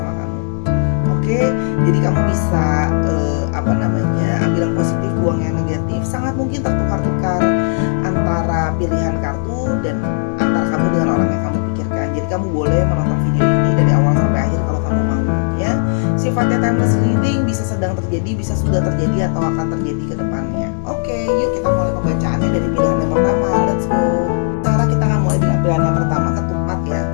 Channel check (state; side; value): silent; right; 69 dB below the other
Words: kamu. Oke, jadi kamu bisa ambil yang positif, buang yang negatif. Sangat mungkin tertukar-tukar antara pilihan kartu dan antara kamu dengan orang yang kamu pikirkan. Jadi kamu boleh menonton video ini dari awal sampai akhir kalau kamu mau ya. Sifatnya timeless reading, bisa sedang terjadi, bisa sudah terjadi, atau akan terjadi ke depannya. Oke, yuk kita mulai pembacaannya dari pilihan yang pertama. Let's go. Sekarang kita akan mulai dengan pilihan yang pertama, ketupat ya.